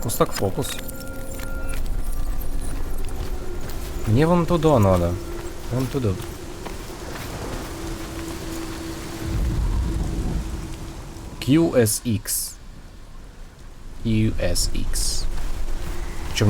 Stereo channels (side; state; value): both; identical; correlation 1.00